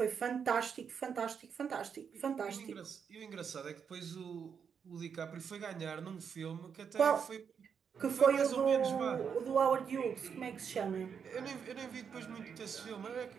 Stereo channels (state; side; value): quieter; left; 6.9 dB